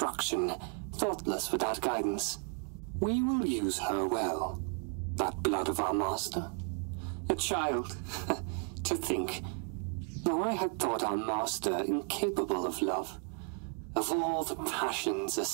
thoughtless without guidance. We will use her well. That blood of our master. A child. To think. Now I had thought our master incapable of love. Of all the passions a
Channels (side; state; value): left; quieter; 39.0 dB